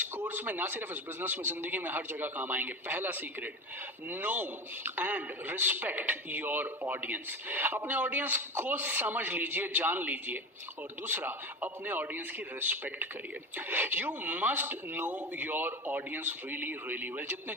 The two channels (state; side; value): normal; both; correlation 0.26